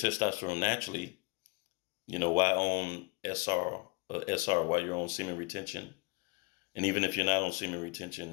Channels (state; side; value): quieter; right; 28.1 dB